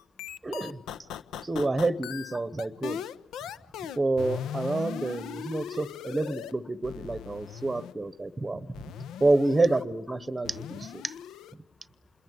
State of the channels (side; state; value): both; normal; correlation 0.93